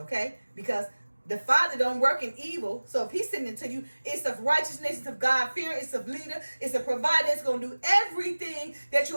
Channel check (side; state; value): both; inverted; correlation -1.00